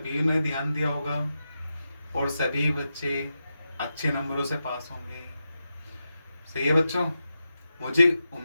ने ध्यान दिया होगा और सभी बच्चे अच्छे नंबरों से पास होंगे। सही है बच्चों, मुझे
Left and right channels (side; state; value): both; inverted; correlation -0.89